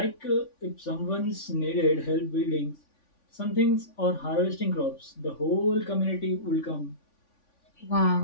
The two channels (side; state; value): right; late; 3.5 ms